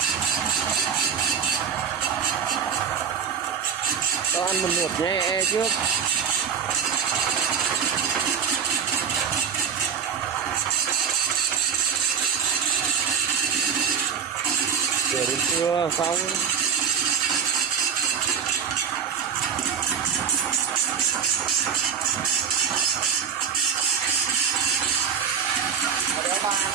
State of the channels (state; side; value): quieter; left; 7.2 dB